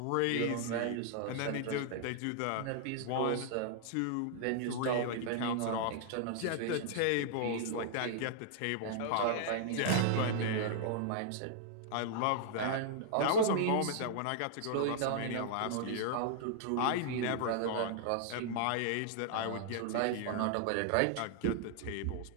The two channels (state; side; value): different; both; correlation -0.01